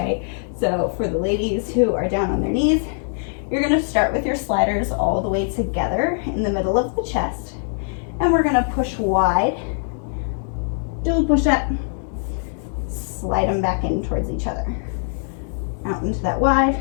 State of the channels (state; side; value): silent; right; 64 dB below the other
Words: So for the ladies who are down on their knees, you're gonna start with your sliders all the way together in the middle of the chest, and we're gonna push wide, do a push-up, slide them back in towards each other. Out into that wide,